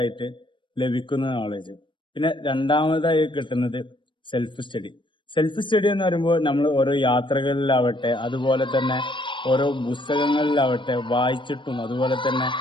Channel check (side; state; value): right; late; 0.24 ms